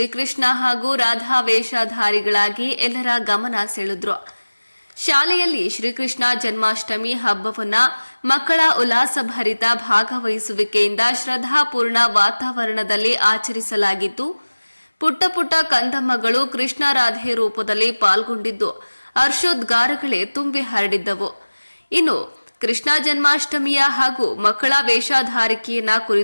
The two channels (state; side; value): inverted; both; correlation -1.00